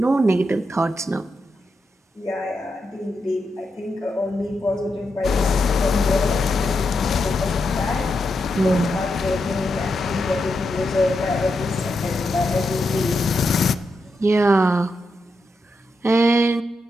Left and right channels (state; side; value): normal; both; correlation 0.85